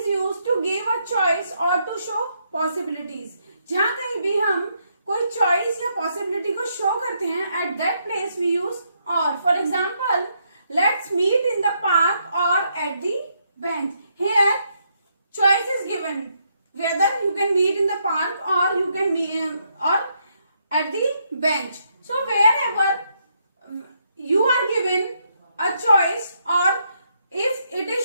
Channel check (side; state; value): both; inverted; correlation -0.76